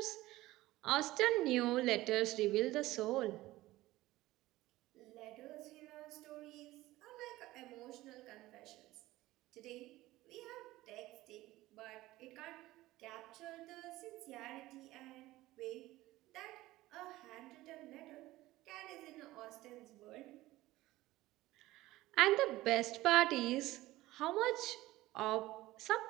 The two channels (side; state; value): left; quieter; 17.4 dB